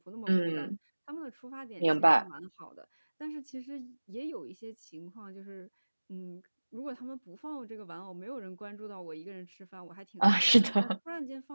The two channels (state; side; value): inverted; both; correlation -1.00